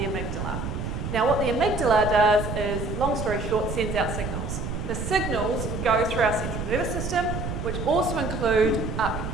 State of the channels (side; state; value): right; noise; rumble, 4 dB below the sound